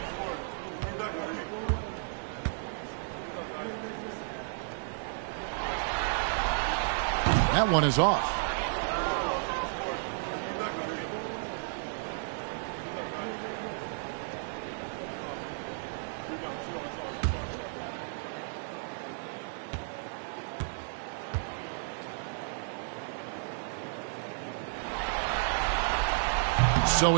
That one is off. So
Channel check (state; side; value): silent; left; 56 dB below the other